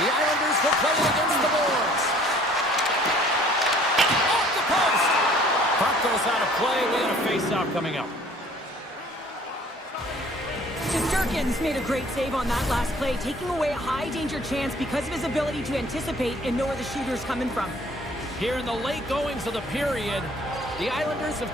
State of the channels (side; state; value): both; normal; correlation 0.54